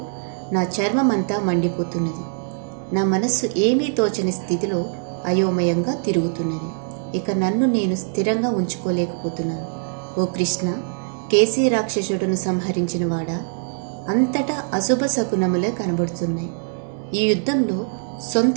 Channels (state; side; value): silent; left; digital silence